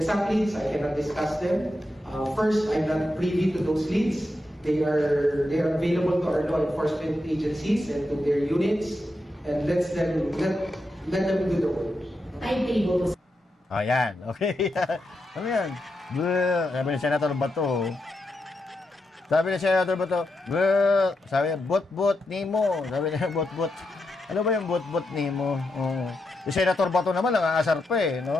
leads, I cannot discuss them. First, I'm not privy to those leads. They are available to our law enforcement agencies and to their units, and let them do the work. Timetable. Ayan, okay. Ano yan? Sabi ni Senator Bato. Sabi niya, bot-bot nimo. Sabi niya, bot-bot. Ano ba yung bot-bot nimo? Si Senator Bato naman, ang aasar pa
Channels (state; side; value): normal; both; correlation 0.86